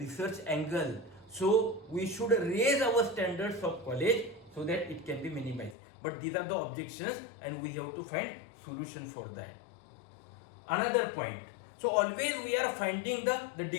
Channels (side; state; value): right; drops out; at 5.8 s